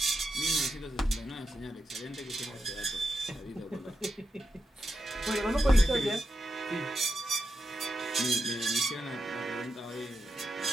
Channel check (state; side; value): normal; both; correlation 0.87